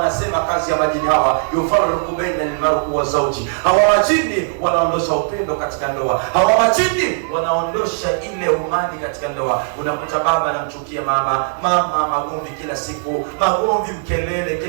kazi ya majini hawa, yufarriqu baina al-mar'i wa zawji. Hawa majini wanaondosha upendo katika ndoa. Hawa majini wanaondosha ile umani katika ndoa. Unakuta baba anamchukia mama, mama magomvi kila siku, magomvi, mkelele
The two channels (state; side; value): silent; left; digital silence